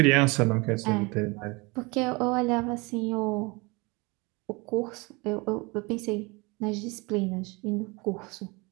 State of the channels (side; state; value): left; quieter; 26.6 dB